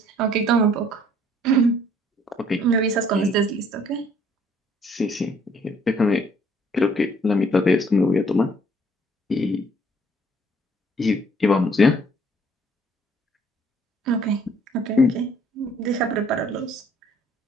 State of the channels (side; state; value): both; normal; correlation 0.62